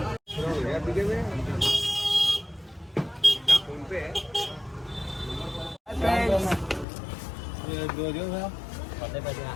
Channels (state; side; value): drops out; right; at 6.9 s